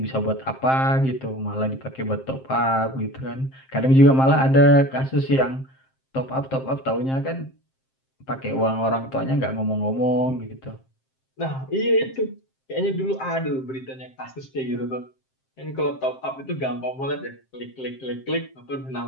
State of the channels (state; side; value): late; right; 7.6 ms